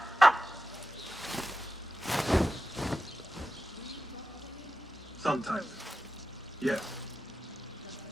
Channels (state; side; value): normal; both; correlation 0.92